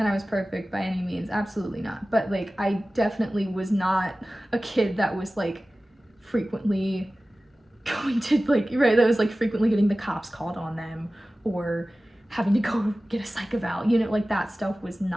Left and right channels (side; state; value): both; normal; correlation 0.96